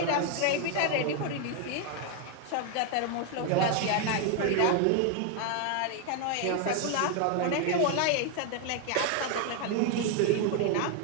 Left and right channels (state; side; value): different; both; correlation 0.01